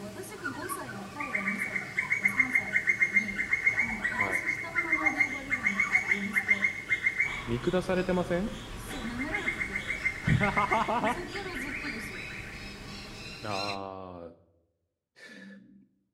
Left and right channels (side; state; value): both; identical; correlation 1.00